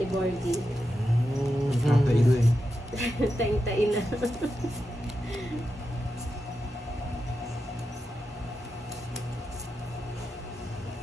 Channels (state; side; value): normal; both; correlation 0.88